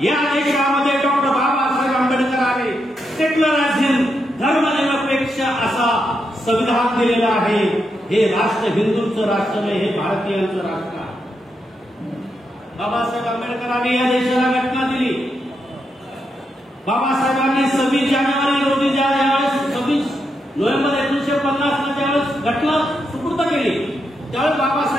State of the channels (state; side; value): normal; both; correlation 0.83